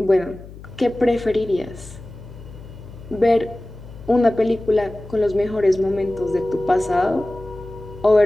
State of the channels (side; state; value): left; noise; hum, 16 dB below the sound